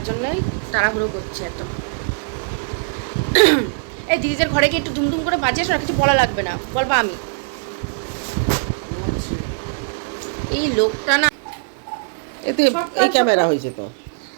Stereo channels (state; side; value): silent; left; digital silence